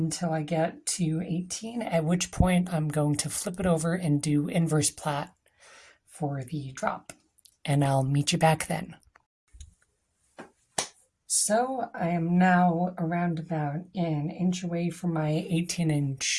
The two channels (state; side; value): identical; both; correlation 1.00